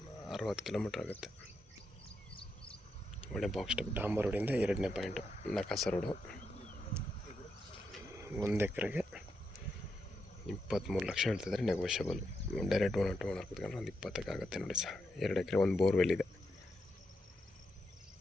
60 kilometre ಆಗುತ್ತೆ. ಒಳ್ಳೆ ಬಾಕ್ಸ್ ಟೈಪ್ ಡಾಂಬರ್ ರೋಡಿಂದ 2ನೇ ಪಾಯಿಂಟು ನಕಾಸ ರೋಡು. 1 ಎಕರೆಗೆ 23 ಲಕ್ಷ ಹೇಳ್ತಿದ್ದಾರೆ, negotiable. Direct owner to owner ಕೂತ್ಕೊಂಡ್ರೆ ಒಂದು 20ಕ್ಕೆ ಆಗುತ್ತೆ ನೋಡಿ ಸರ್. 2 ಎಕರೆ, 1 ಬೋರ್ವೆಲ್ ಇದೆ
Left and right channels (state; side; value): normal; both; correlation 0.83